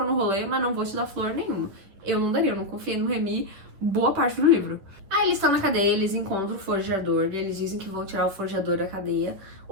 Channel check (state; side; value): late; left; 10 ms